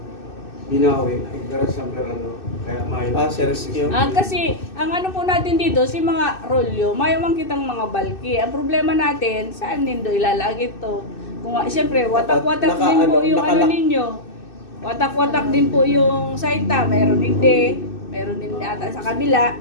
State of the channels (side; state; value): right; late; 2.6 ms